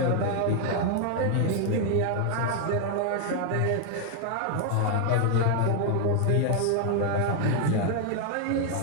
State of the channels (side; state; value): both; different; correlation 0.00